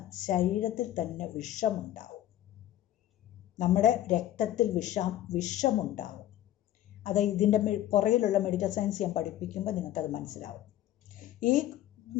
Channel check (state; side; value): quieter; right; 13.0 dB